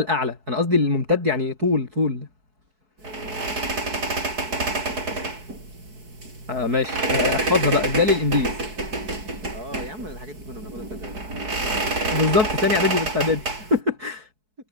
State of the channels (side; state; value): left; late; 4.6 ms